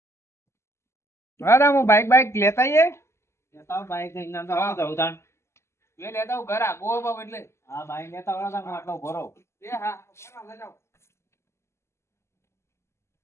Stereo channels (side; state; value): right; late; 0.13 ms